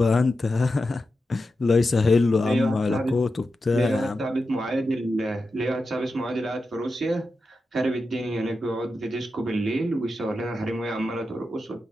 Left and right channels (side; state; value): both; normal; correlation 0.90